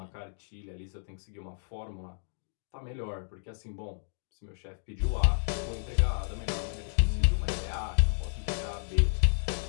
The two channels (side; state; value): right; silent; digital silence